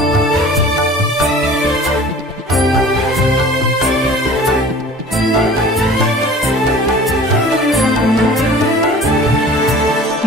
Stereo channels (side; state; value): both; normal; correlation 0.44